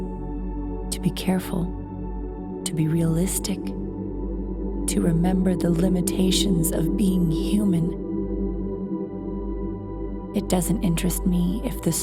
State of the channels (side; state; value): both; identical; correlation 1.00